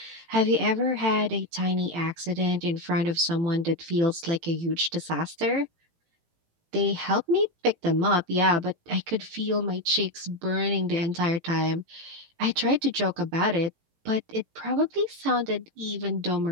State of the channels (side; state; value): left; late; 18 ms